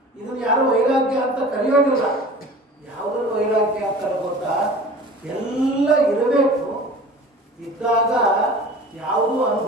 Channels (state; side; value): normal; both; correlation 0.41